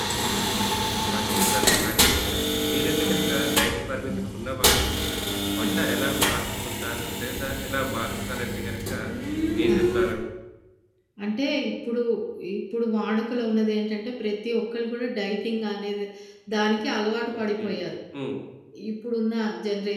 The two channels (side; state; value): both; identical; correlation 1.00